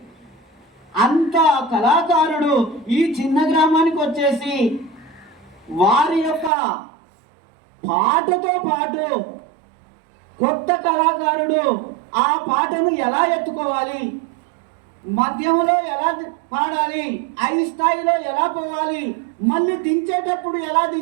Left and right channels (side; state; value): left; drops out; at 6.5 s